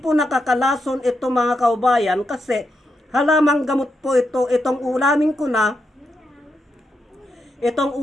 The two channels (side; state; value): both; normal; correlation 0.84